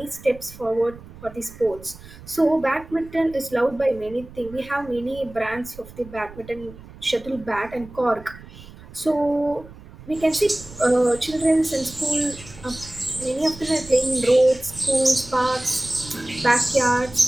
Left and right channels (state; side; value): noise; right; rumble, 18 dB below the sound